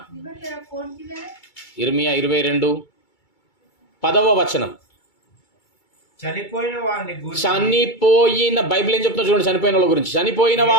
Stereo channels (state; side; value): late; right; 2.3 ms